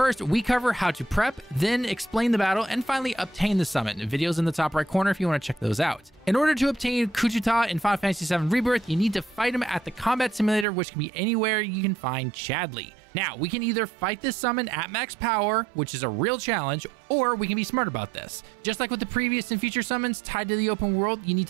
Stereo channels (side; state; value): left; drops out; at 10.7 s